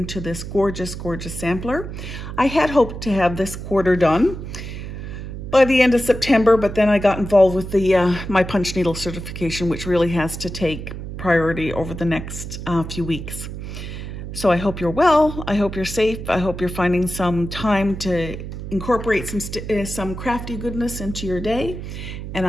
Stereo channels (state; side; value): noise; right; hum, 8 dB below the sound